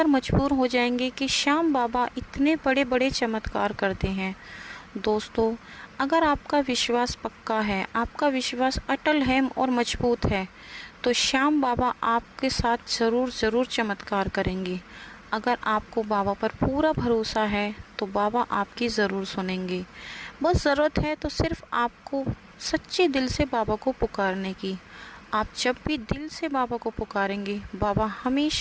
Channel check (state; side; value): identical; both; correlation 1.00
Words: मजबूर हो जाएंगे कि श्याम बाबा इतने बड़े बड़े चमत्कार करते हैं। दोस्तों, अगर आपका विश्वास पक्का है, आपका विश्वास अटल है और मजबूत है, तो श्याम बाबा आपके साथ ज़रूर चमत्कार करेंगे। अगर आपको बाबा पर पूरा भरोसा है तो बाबा आपकी ज़रूर सुनेंगे। बस ज़रूरत है तो सिर्फ आपको सच्चे दिल से बाबा को पुकारने की। आप जब भी दिल से बाबा को पुकारेंगे, बाबा